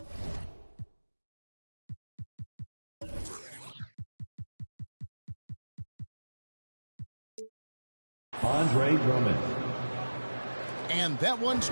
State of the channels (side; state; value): both; inverted; correlation -1.00